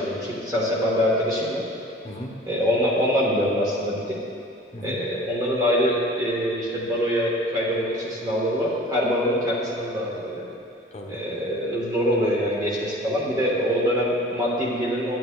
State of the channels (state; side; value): normal; both; correlation 0.44